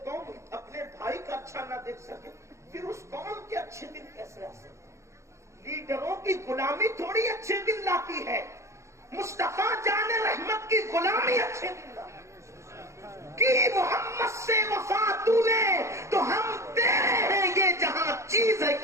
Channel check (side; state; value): left; late; 0.14 ms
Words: قوم اپنے بھائی کا اچھا نہ دیکھ سکے پھر اس قوم کے اچھے دن کیسے آ سکتے؟ لیڈروں کی غلامی تھوڑی اچھے دن لاتی ہے.